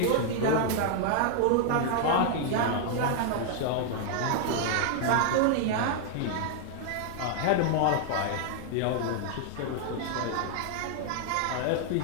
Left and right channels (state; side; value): different; both; correlation 0.00